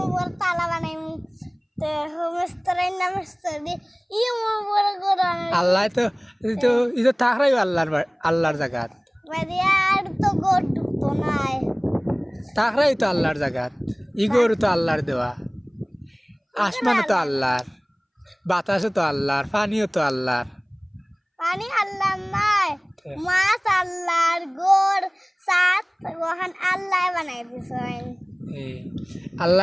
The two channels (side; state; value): both; identical; correlation 1.00